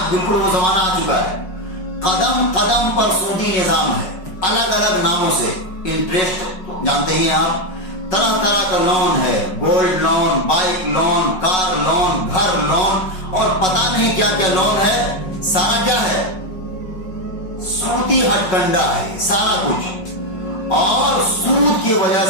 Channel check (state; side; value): late; right; 5.4 ms